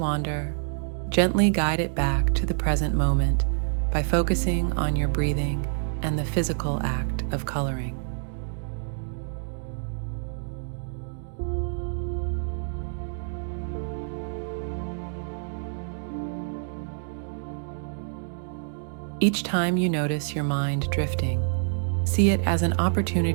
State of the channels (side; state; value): left; silent; digital silence